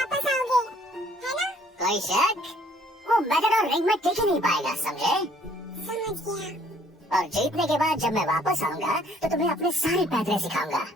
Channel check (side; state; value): both; normal; correlation 0.61